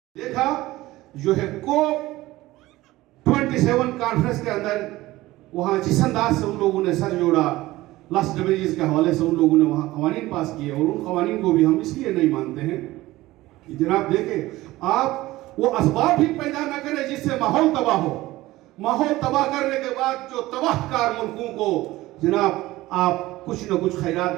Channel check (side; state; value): left; quieter; 17.8 dB